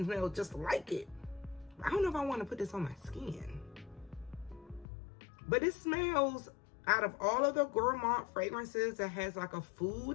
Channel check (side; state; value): right; drops out; at 4.9 s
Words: just like it. I don't know if I want to put this on my skin. But it smells, out of all of the gourmand fragrances that has like a